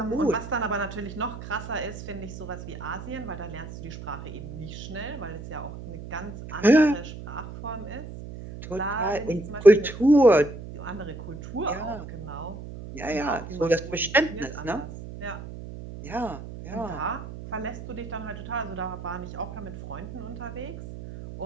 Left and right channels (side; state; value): right; noise; hum, 11 dB below the sound